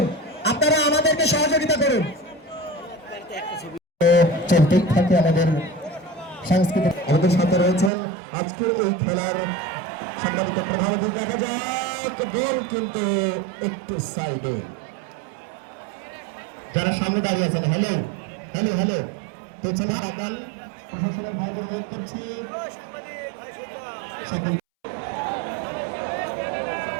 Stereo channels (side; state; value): left; drops out; at 7.9 s